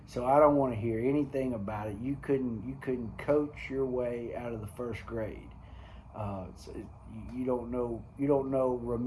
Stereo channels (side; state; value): both; identical; correlation 1.00